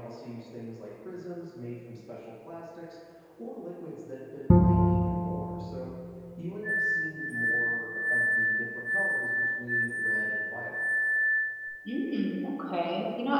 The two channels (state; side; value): identical; both; correlation 1.00